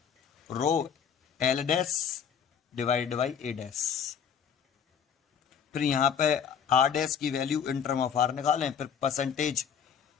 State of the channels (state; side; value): quieter; right; 7.7 dB